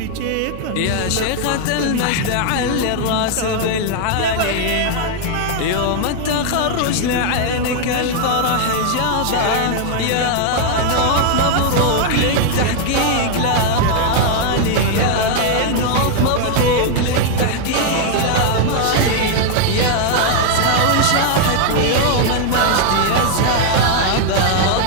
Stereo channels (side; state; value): both; different; correlation 0.00